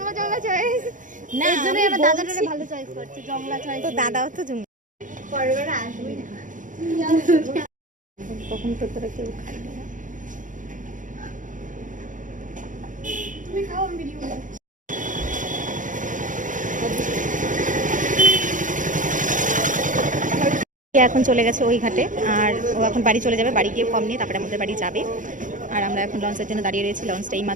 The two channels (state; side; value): late; left; 0.38 ms